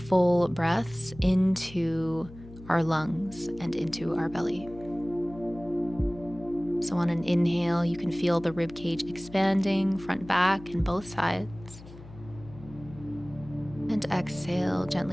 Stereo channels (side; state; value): left; noise; hum, 18 dB below the sound